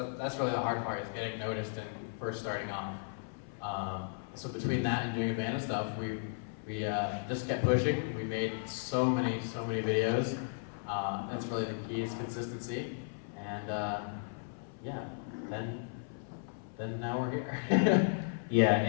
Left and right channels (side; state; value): right; silent; 54 dB below the other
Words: that's really the hard part, is getting noticed and first starting off. So between that and doing abandoned stuff, we just kept pushing. We made so many videos. That's really the key, is consistency. And yeah, then now we're here. yeah,